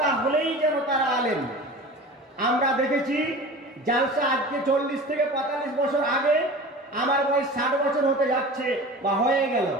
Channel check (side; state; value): both; normal; correlation 0.37